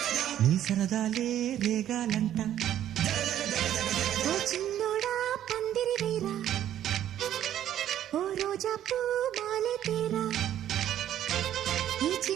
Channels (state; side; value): quieter; left; 11.4 dB